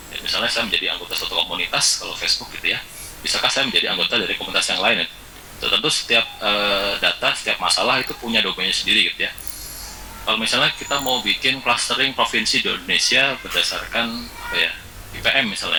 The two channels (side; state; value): both; identical; correlation 1.00